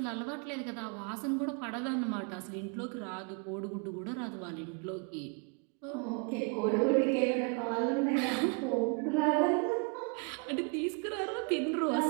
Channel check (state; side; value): quieter; left; 35.1 dB